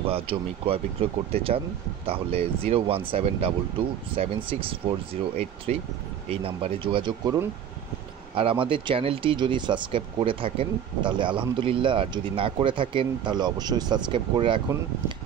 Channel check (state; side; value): quieter; left; 9.2 dB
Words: জমি ক্রয় বিক্রয় করতে চান তাহলে 01722764083 এই নাম্বারে যোগাযোগ করুন। আর আমাদের চ্যানেলটি যদি সাবস্ক্রাইব করে থাকেন তাহলে আলহামদুলিল্লাহ, আর যদি না করে থাকেন তাহলে অবশ্যই সাবস্ক্রাইব করে রাখুন,